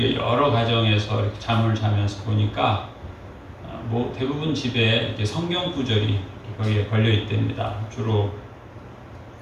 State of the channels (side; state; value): both; identical; correlation 1.00